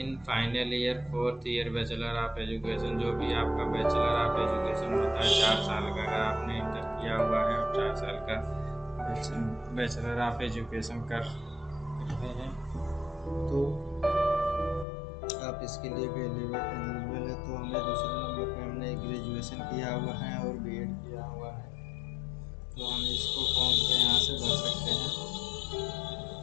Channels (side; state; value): right; drops out; at 14.9 s